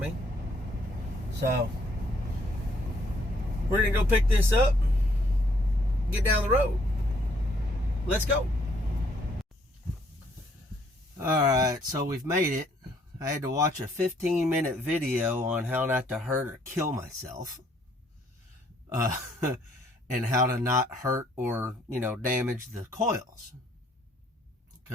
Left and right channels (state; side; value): normal; both; correlation 0.66